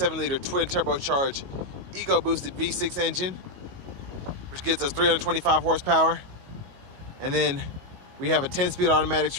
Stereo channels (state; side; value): late; left; 22 ms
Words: liter twin turbocharged eco boosted V6 engine, which gives us 325 horsepower. And then we have a 10-speed automatic